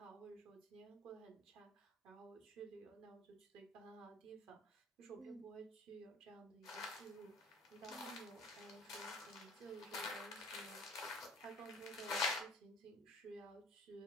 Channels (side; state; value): both; normal; correlation 0.48